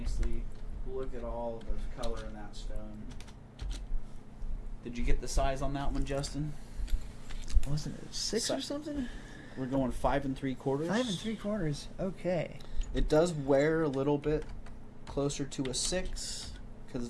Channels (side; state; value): both; identical; correlation 1.00